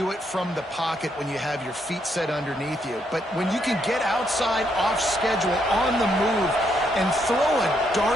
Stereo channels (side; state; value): both; normal; correlation 0.75